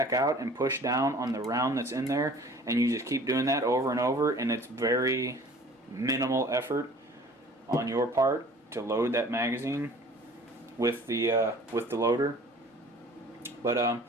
out and push down on the round that's in there. And you just keep doing that over and over, and it's very minimal effort on your part to load that magazine with the loader. But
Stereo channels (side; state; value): both; normal; correlation 0.48